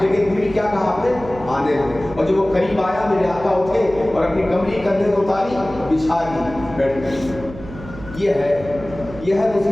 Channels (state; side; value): noise; right; hum, 15 dB below the sound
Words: لیکن پھر کیا کہا آپ نے؟ آنے دو۔ اور جب وہ قریب آیا، میرے آقا اٹھے اور اپنی کمری کندھے کو اتاری، بچھا دی، بیٹھ گئی۔ یہ ہے